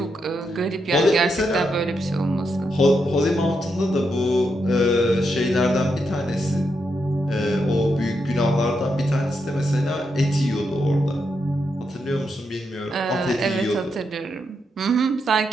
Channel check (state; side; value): normal; both; correlation 0.82